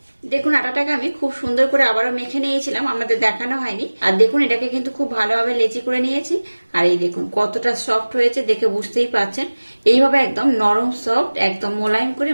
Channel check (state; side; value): inverted; both; correlation -1.00